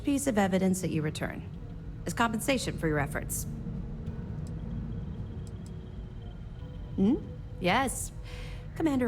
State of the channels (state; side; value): identical; both; correlation 1.00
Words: piece of evidence that you return, as compensation for your efforts. Yes.